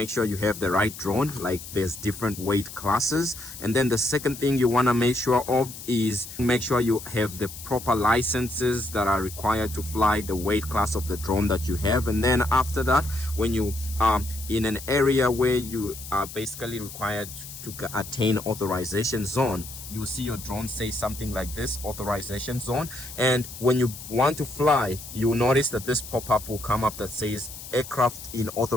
sure you have the right drone. Like, there's different weight classes. And then the second thing you want to make sure of is make sure you have the proper licenses that are required to fly the weight class of the drone that you have. And then after that, when you are in an area where you are basically required to attain authorization zone, you see your drone say something like this, authorization zone. And when you want to fly, you'll notice that this pop-up will come up that says aircraft in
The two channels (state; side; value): noise; left; hiss, 13 dB below the sound